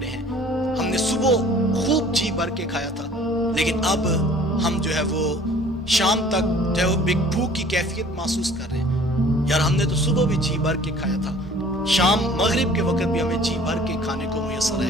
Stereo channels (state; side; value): normal; both; correlation 0.51